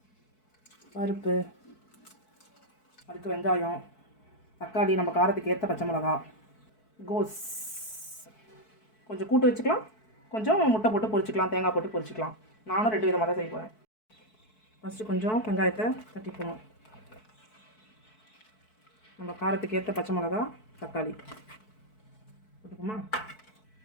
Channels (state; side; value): late; right; 4.6 ms